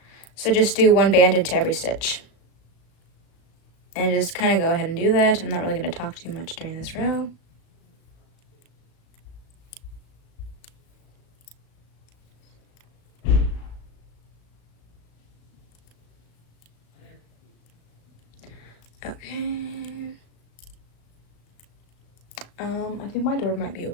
So just do 1 band into every stitch. And just kind of go ahead and do that. I'm not really going to talk too much during this row. Okay. I think my door might be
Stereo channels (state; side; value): late; right; 36 ms